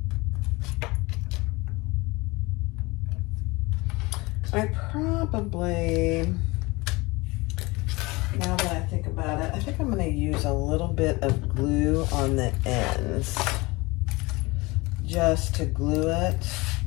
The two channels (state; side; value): quieter; right; 23.6 dB